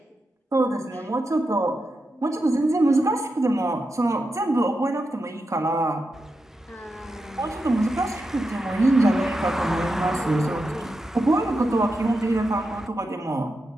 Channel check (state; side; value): normal; both; correlation 0.88